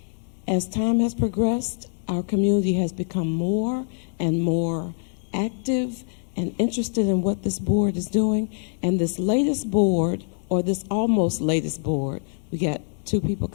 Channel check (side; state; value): right; silent; digital silence